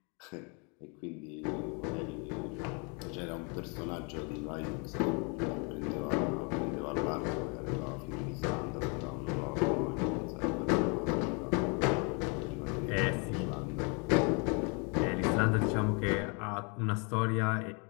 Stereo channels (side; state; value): right; quieter; 34.3 dB